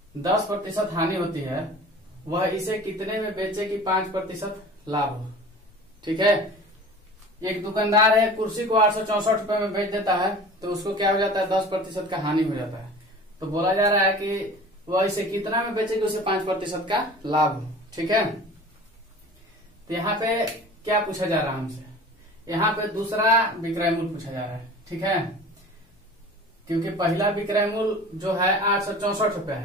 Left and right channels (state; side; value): normal; both; correlation 0.41